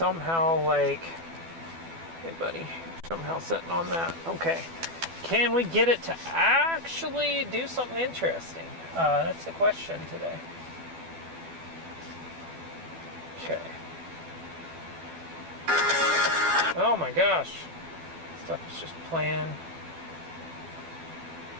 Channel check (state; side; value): late; left; 12 ms